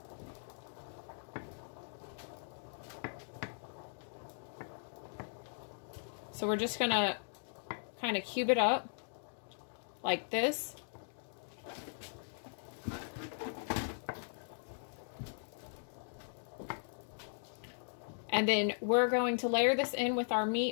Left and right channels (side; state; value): right; silent; digital silence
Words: So we're just gonna kind of cube it up like this. And then we're going to layer this in with our